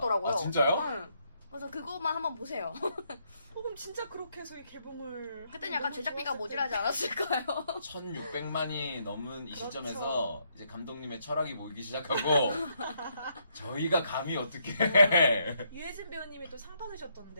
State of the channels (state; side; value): inverted; both; correlation -0.74